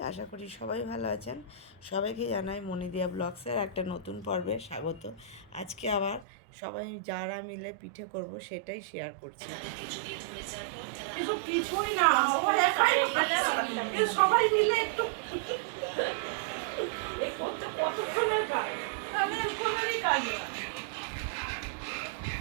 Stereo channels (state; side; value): drops out; left; at 6.2 s